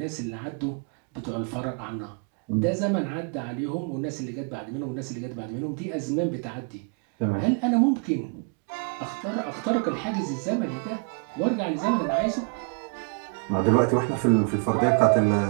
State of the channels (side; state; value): left; quieter; 37.2 dB